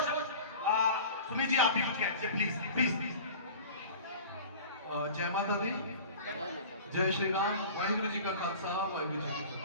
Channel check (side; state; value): both; inverted; correlation -0.39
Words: शब्द सुनील जी आप भी कुछ कहें प्लीज प्लीज। जय माता दी, जय श्री राम, वाहिगुरु जी का खालसा, वाहिगुरु जी की